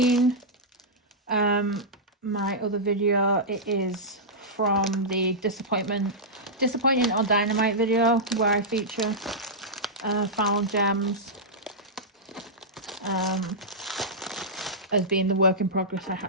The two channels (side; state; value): both; normal; correlation -0.11